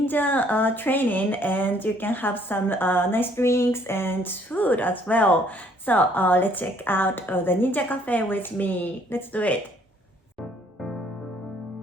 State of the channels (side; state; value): both; normal; correlation 0.63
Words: training and you can have some nice drinks and food as well. So let's check out the ninja cafe with me. Let's do it.